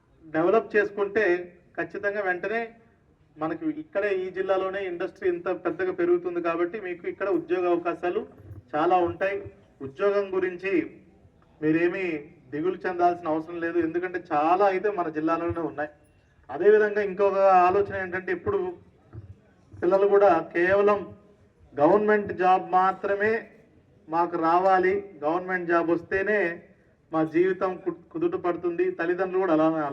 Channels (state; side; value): identical; both; correlation 1.00